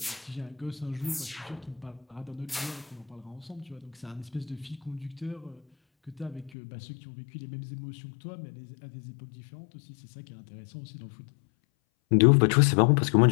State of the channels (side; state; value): right; drops out; at 6.5 s